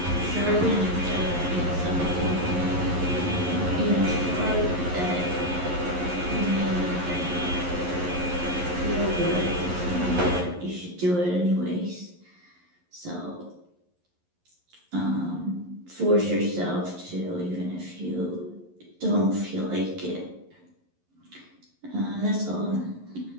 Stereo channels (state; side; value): late; left; 11 ms